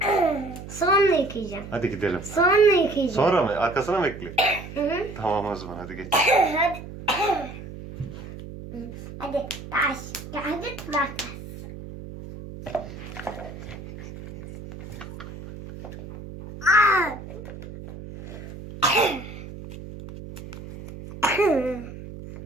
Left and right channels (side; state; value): right; noise; hum, 12 dB below the sound